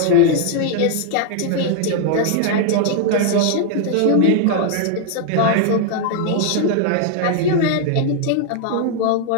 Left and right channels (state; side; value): different; both; correlation 0.00